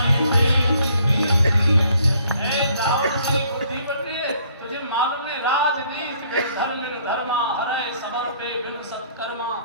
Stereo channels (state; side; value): inverted; both; correlation -0.62